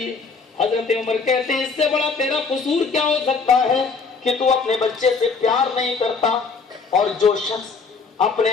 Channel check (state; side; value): quieter; right; 4.8 dB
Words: حضرت عمر کہتے ہیں اس سے بڑا تیرا قصور کیا ہو سکتا ہے کہ تو اپنے بچے سے پیار نہیں کرتا, اور جو شخص